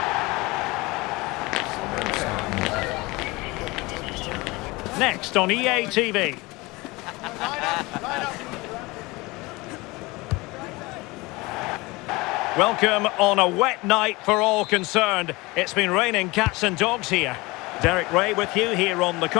Next on EA TV. Welcome on a wet night for all concerned. It's been raining cats and dogs here. Derek Ray with you here on the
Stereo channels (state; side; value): quieter; right; 23.1 dB